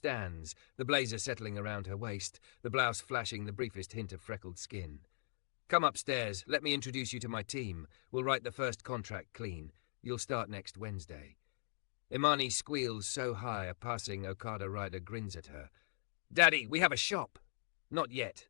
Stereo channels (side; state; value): right; silent; digital silence